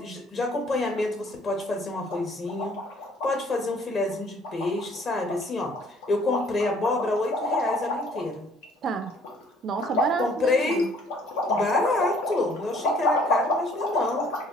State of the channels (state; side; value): normal; both; correlation 0.59